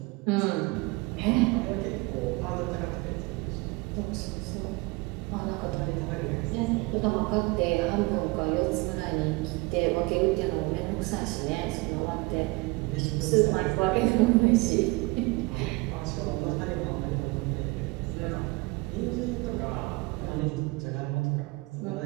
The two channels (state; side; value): quieter; left; 24.6 dB